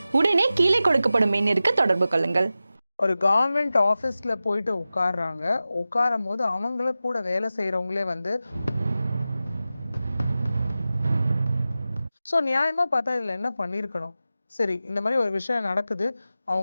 உடனே கீழே கொடுக்கப்படும் எண்ணிற்கு தொடர்பு கொள்ளுங்கள். ஒரு கவர்மெண்ட் ஆஃபீஸில் போயிட்டு உட்காடுறாங்க. உட்காரும் போது அவங்கள கூட வேலை செய்கிறவங்களே ஸோ நியாயமாக பார்த்தா இதில் என்ன பண்ணியிருக்கணும்? சரி, இந்த மாதிரி ஒரு விஷயம் நடக்குது.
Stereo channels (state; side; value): inverted; both; correlation -0.94